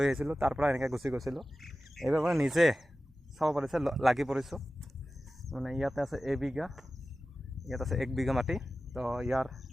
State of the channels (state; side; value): normal; both; correlation 0.95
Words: আহিছিলোঁ, তাৰ পৰা এনেকৈ গুচি গৈছিলোঁ। এইবাৰ মানে নিজে চাব পাৰিছে লাগি পৰিছোঁ। মানে ইয়াতে আছে এবিঘা, ইয়াত আছে 1 বিঘা মাটি। তো ইয়াৰ